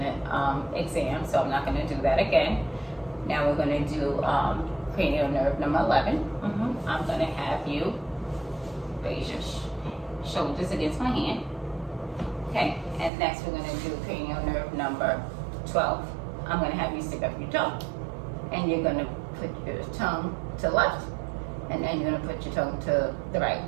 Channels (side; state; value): left; drops out; at 13.1 s